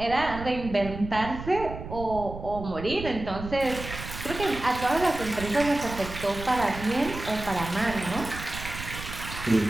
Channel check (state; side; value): noise; right; rumble, 10 dB below the sound